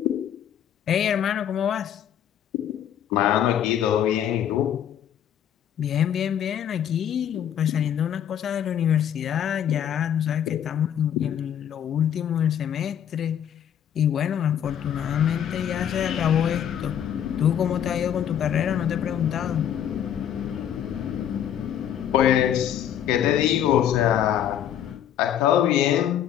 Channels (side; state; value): right; quieter; 9.8 dB